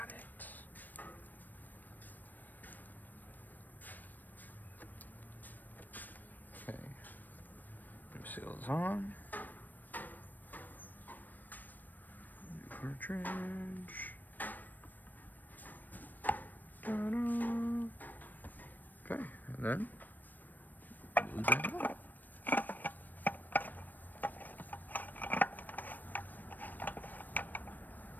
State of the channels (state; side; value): late; right; 0.088 ms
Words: it. Okay. New seals on. New cartridge. Ta-da. Okay, and then glue that up.